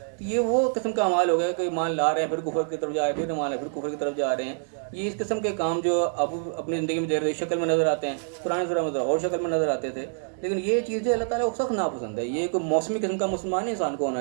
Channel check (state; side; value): silent; left; digital silence